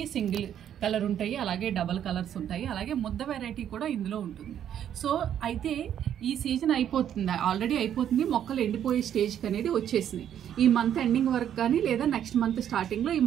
సింగిల్ కలర్ ఉంటాయి, అలాగే డబల్ కలర్స్ ఉంటాయి, అలాగే ముద్ద వెరైటీ కూడా ఇందులో ఉంటుంది. సో అయితే ఈ సీజన్ అయిపోతుంది, ఆల్రెడీ అయిపోతుంది, మొక్కలు ఎండిపోయే స్టేజ్కి అనేది వచ్చేసింది. ఈ మంత్ ఎండింగ్ వరకు కానీ లేదా నెక్స్ట్ మంత్ స్టార్టింగ్లో ఈ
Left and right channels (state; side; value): quieter; left; 9.9 dB